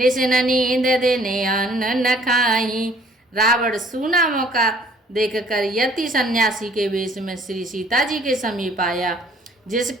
नींद देने अन्न न खाई। रावण सूना मौका देखकर यति सन्यासी के वेश में श्री सीता जी के समीप आया,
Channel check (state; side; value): normal; both; correlation 0.57